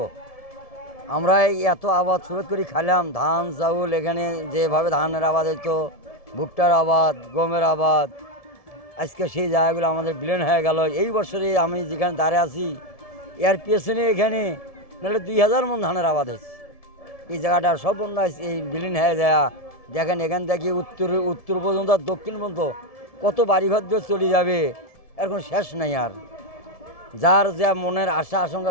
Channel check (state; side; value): late; right; 1.7 ms